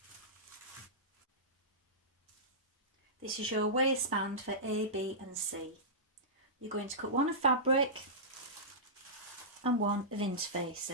This is your waistband for A, B and C. You're going to cut one of fabric and one of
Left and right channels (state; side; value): normal; both; correlation -0.17